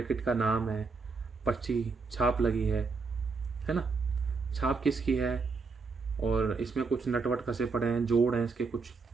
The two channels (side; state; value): left; quieter; 4.5 dB